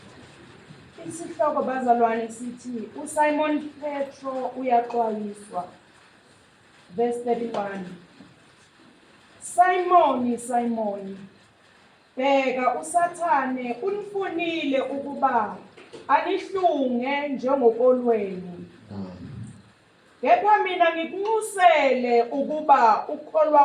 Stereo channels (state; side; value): identical; both; correlation 1.00